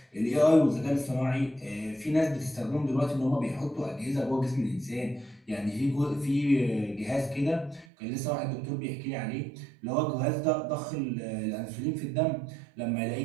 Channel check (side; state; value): left; drops out; at 7.9 s